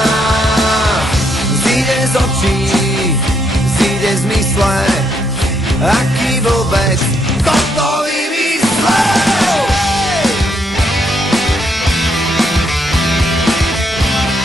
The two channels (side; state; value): both; normal; correlation 0.74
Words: Zíde z očí, zíde z mysle, aký vôbec toto vymyslel.